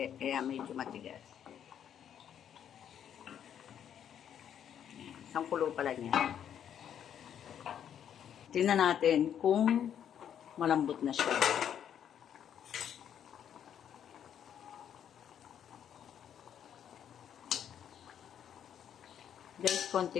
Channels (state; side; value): quieter; right; 9.2 dB